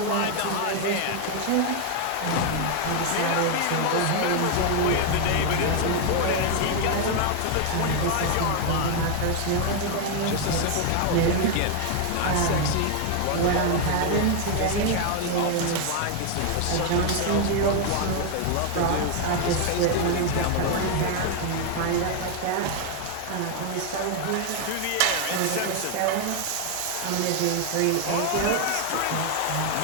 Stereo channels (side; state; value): both; different; correlation 0.00